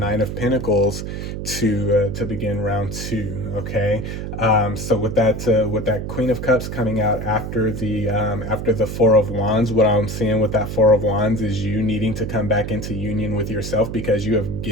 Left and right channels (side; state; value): right; noise; hum, 6 dB below the sound